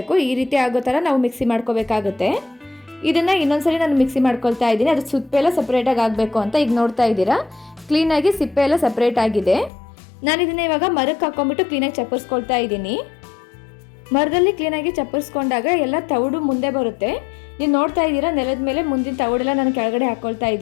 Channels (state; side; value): drops out; right; at 9.7 s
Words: ಈ ರೀತಿ ಆಗೋ ಥರ ನಾವು ಮಿಕ್ಸಿ ಮಾಡ್ಕೋಬೇಕಾಗುತ್ತೆ. ಇದನ್ನು ಇನ್ನೊಂದ್ಸರಿ ನಾನು ಮಿಕ್ಸಿ ಮಾಡ್ಕೊಳ್ತಾ ಇದ್ದೀನಿ. ಅದು ಸಿಪ್ಪೆ ಎಲ್ಲ ಸಪ್ರೇಟಾಗಿ ಆಗಬೇಕು ಅಂತ. ಈಗ ನೋಡ್ತಾ ಇದ್ದೀರಾ, ಕ್ಲೀನಾಗಿ ಸಿಪ್ಪೆ ಎಲ್ಲ ಸಪ್ರೇಟ್ ಆಗಿದೆ. ನಾನು ಇದನ್ನು ಇವಾಗ ಮರಕ್ಕೆ ಹಾಕ್ಕೊಂಬಿಟ್ಟು ಕ್ಲೀನಾಗಿ ಚಪ್ಪರಿಸ್ಕೊಳ್ತಾ ಇದ್ದೀನಿ. ಮರದಲ್ಲಿ ಕ್ಲೀನಾಗಿ ಚಪ್ಪರಿಸ್ಕೊಂಡಾಗ ಎಲ್ಲ ತೌಡು ಮುಂದೆ ಬರುತ್ತೆ. ನೀವು ನೋಡ್ತಾ ಇದ್ದೀರಾ, ನೆಲದ ಮೇಲೆ ಮುಂದಿನ ತೌಡೆಲ್ಲ ನಾನು ಕೆಳಗಡೆ ಹಾಕ್ಕೊಳ್ತಾ